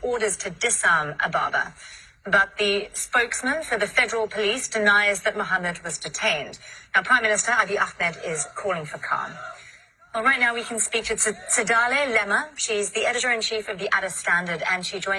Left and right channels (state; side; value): identical; both; correlation 1.00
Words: orders to disarm Ababa. But the spokesman for the federal police denies that Mohammed was detained. Now, Prime Minister Abiy Ahmed is calling for calm. Well, right now we can speak to Tsadale Lema. She's the editor-in-chief of the Addis Standard, and she